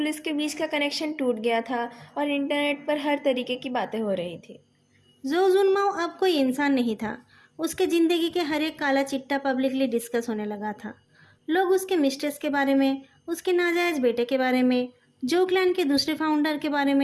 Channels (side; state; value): both; identical; correlation 1.00